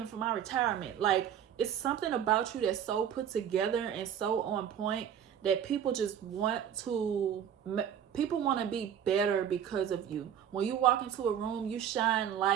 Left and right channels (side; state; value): left; quieter; 9.1 dB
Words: for my retirement. Like, it's something about you that's so put together and so on point that people just want to be better because of you. When you walk into a room, you shine